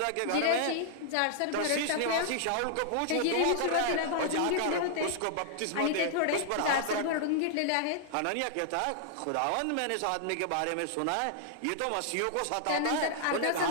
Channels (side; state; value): both; different; correlation -0.01